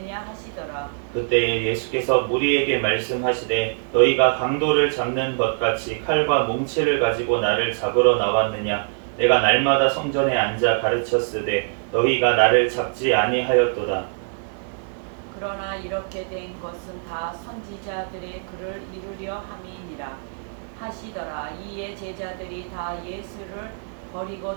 하시더라. 그때에 예수께서 무리에게 말씀하시되 너희가 강도를 잡는 것 같이 칼과 뭉치를 가지고 나를 잡으러 나왔느냐. 내가 날마다 성전에 앉아 가르쳤으되 너희가 나를 잡지 아니하였도다. 그러나 이렇게 된 것은 다 선지자들의 글을 이루려 함이니라 하시더라. 이에 제자들이 다 예수를 버리고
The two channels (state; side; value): silent; left; digital silence